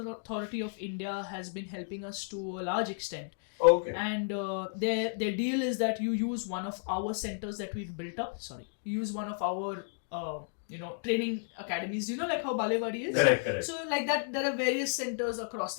of India has been helping us to a large extent. Okay. And their deal is that you use one of our centers that we've built up. You use one of our training academies, like how Balewadi is. Correct. So like that, there are various centers across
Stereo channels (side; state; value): right; silent; digital silence